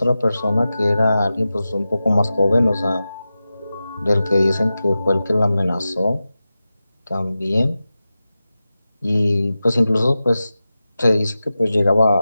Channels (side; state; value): both; inverted; correlation -0.94